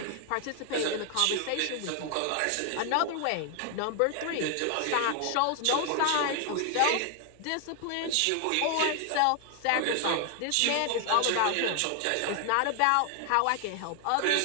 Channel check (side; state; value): both; different; correlation 0.00